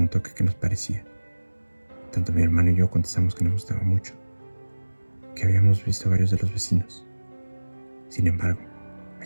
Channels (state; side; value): inverted; both; correlation -1.00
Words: qué nos parecía. Tanto mi hermano y yo contestamos que nos gustaba mucho, que habíamos visto a varios de los vecinos. Sin embargo,